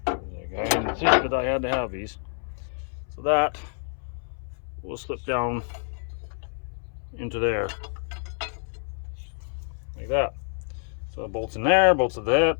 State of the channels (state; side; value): silent; right; 60 dB below the other